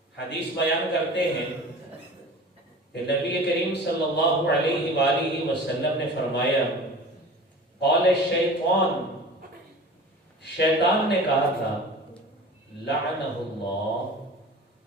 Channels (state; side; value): normal; both; correlation 0.38